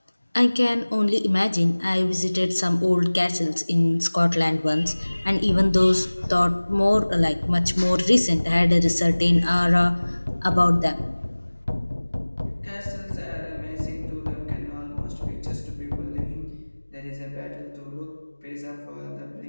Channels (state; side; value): inverted; both; correlation -1.00